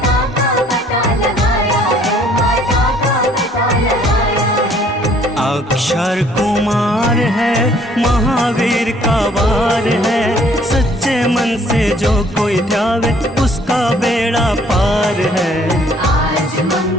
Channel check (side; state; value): both; normal; correlation 0.60